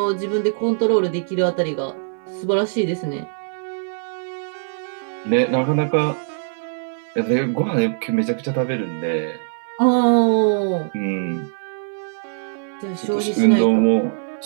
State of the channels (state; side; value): silent; left; digital silence